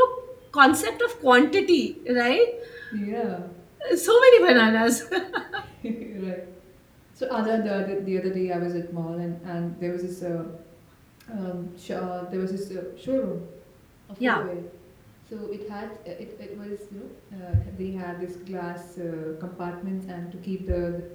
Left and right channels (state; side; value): identical; both; correlation 1.00